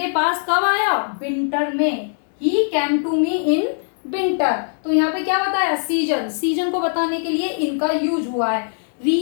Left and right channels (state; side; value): silent; right; digital silence